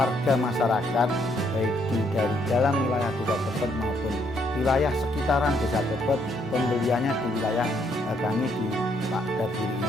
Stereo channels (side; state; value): both; normal; correlation 0.71